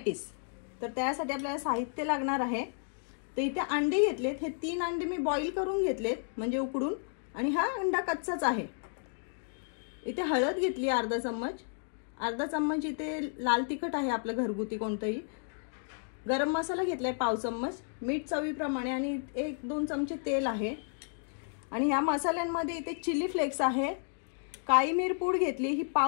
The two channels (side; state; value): right; silent; digital silence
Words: तर त्यासाठी आपल्याला साहित्य लागणार आहे. तर इथे अंडे घेतलेत, हे 3 अंडे मी बॉईल करून घेतलेत म्हणजे उकडून, आणि हा अंडा कच्चाच आहे. इथे हळद घेतली अर्धा चम्मच, इथे लाल तिखट आहे आपलं घरगुती कोणतंही, गरम मसाला घेतलाय पाव चम्मच, मीठ चवीप्रमाणे, आणि 1-2 चमचे तेल आहे. आणि या मसाल्यांमध्ये इथे चिली फ्लेक्स आहे, काळी मिरपूड घेतली ही